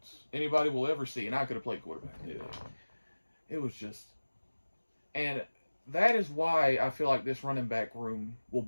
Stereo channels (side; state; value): both; inverted; correlation -1.00